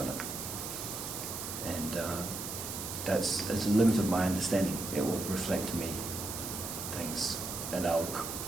it. And that's the limit of my understanding. It will reflect to me things, and I'll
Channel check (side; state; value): right; noise; hiss, 6 dB below the sound